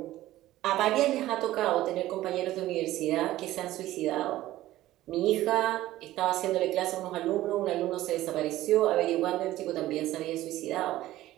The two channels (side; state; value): left; quieter; 15.3 dB